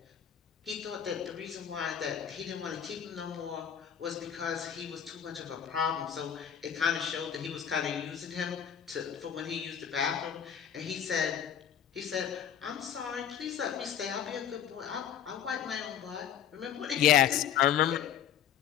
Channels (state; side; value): quieter; right; 8.9 dB